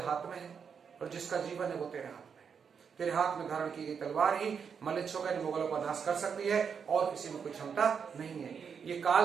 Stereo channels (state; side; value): quieter; left; 6.6 dB